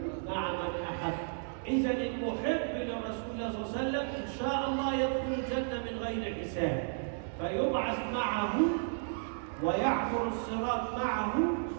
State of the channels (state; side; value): silent; left; digital silence